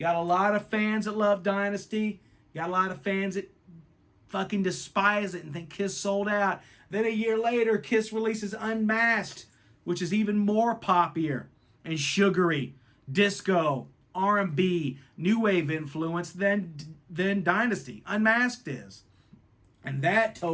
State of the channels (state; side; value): identical; both; correlation 1.00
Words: got a lot of fans that love Dynasty. You got a lot of fans that fucking despise it and think Kiss sold out. Then a year later, Kiss releases Unmasked, which is even more poppier and sugary, disco, R&B, new wave influence than Dynasty. Unmasked is. And that